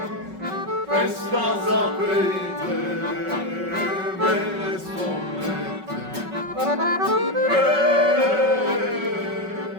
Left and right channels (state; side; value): late; left; 5.3 ms